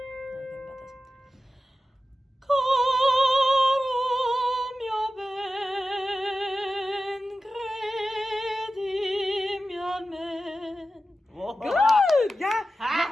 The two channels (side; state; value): both; normal; correlation 0.93